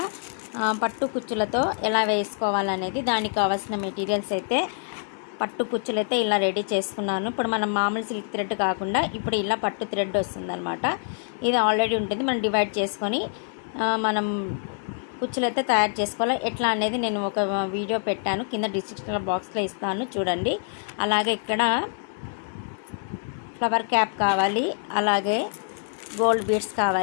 పట్టు కుచ్చులతో ఎలా వేసుకోవాలనేది, దానికి కావాల్సిన మెటీరియల్స్ అయితే పట్టు కుచ్చులు అయితే ఇలా రెడీ చేసుకున్నాను. ఇప్పుడు మనం మామూలు సిల్క్ థ్రెడ్ కాకుండా ఇప్పుడు ఇలా పట్టు థ్రెడ్ వస్తుందన్నమాట. ఇది ఆల్రెడీ ఉంటుంది, మనం డివైడ్ చేసుకొని మనం కుచ్చులు అయితే తయారు చేసుకోవాలి. ఎట్లా అనేది నేను ఒక వీడియో పెట్టాను, కింద డిస్క్రిప్షన్ బాక్స్లో ఇస్తాను చూడండి. అలాగే ఇక్కడ ఫ్లవర్ క్యాప్ కావాలి, అలాగే గోల్డ్ బీడ్స్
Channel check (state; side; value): silent; right; 61 dB below the other